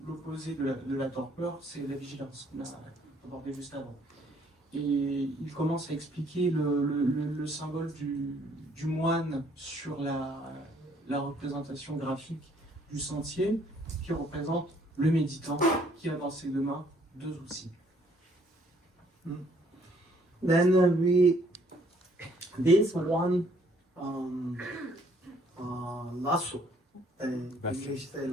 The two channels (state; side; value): normal; both; correlation 0.64